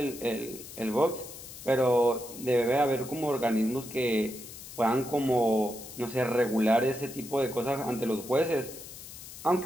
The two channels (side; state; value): left; noise; hiss, 14 dB below the sound